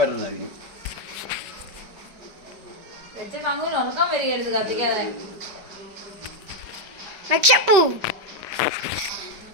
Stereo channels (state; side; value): late; left; 5.2 ms